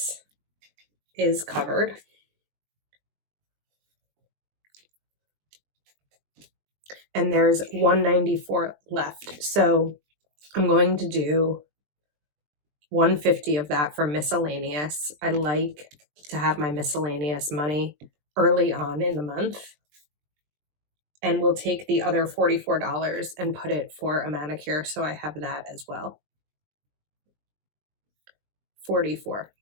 is covered. and there's 194 left. So I'm going to do 150 of that for miscellaneous. I like to have my miscellaneous money early on in the month. And we'll take the other $44 and put it for a manicure, so I have that as well. 44.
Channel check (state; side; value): late; left; 20 ms